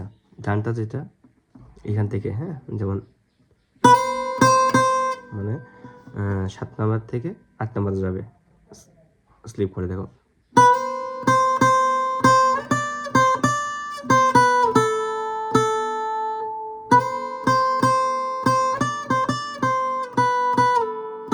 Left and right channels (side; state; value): both; identical; correlation 1.00